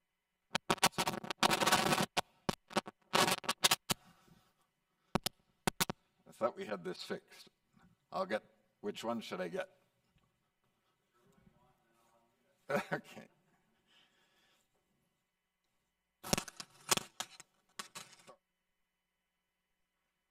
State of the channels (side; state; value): both; identical; correlation 1.00